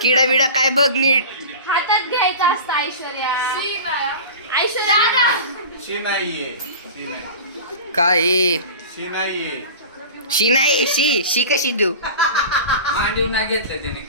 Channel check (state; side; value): inverted; both; correlation -0.34